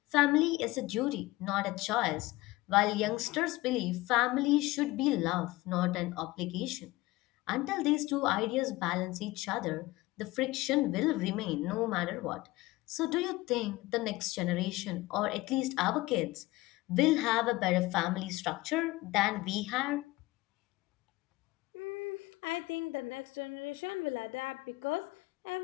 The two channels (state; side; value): quieter; right; 19.8 dB